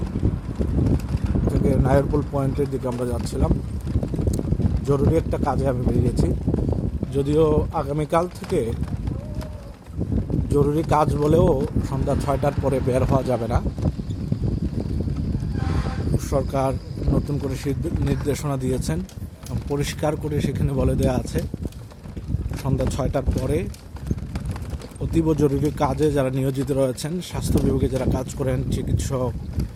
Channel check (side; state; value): both; identical; correlation 1.00